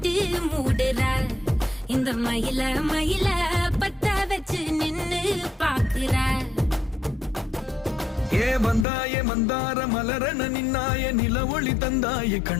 மூடுற இந்த மயில மயில பத்த வச்சு நின்னு பாக்குற. ஏ வந்தாய மந்தார மலரன நின்னாய நில ஒளி தந்தாய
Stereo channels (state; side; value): drops out; right; at 8.8 s